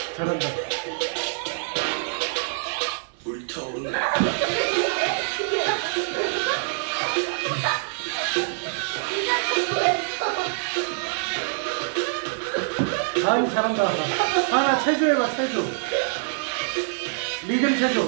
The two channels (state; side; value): silent; left; digital silence